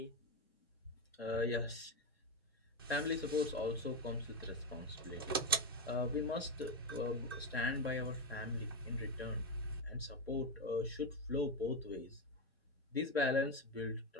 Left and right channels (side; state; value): both; normal; correlation 0.12